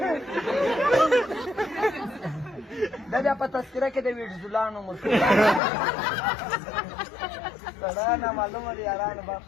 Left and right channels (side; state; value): right; drops out; at 5.6 s